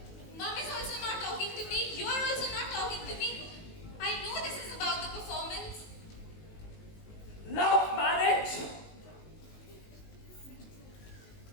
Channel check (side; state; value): right; late; 19 ms